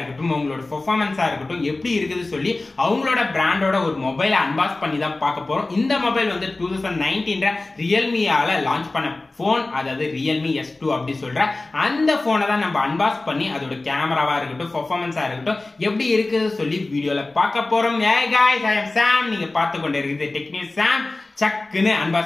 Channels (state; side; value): quieter; right; 3.1 dB